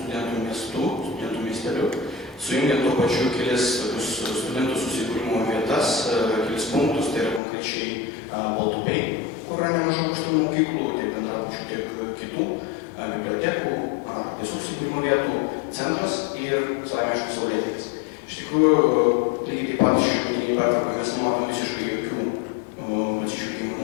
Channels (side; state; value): right; drops out; at 7.4 s